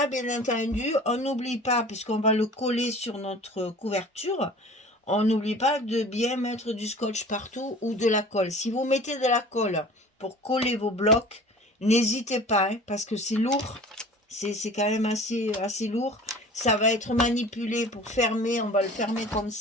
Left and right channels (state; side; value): normal; both; correlation 0.43